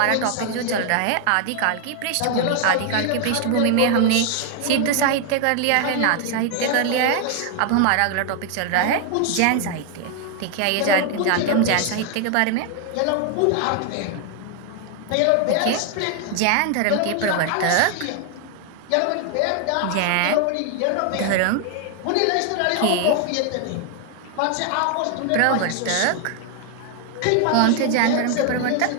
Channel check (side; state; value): both; different; correlation 0.00